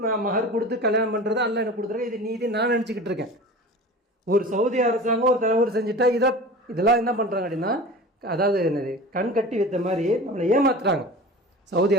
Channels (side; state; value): both; normal; correlation 0.36